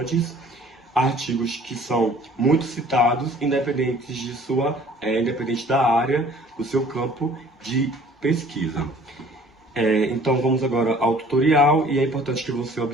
artigos que são muito citados, independente da área, do seu campo de pesquisa. Então vamos agora ao tutorial e é importante que você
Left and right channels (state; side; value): normal; both; correlation 0.53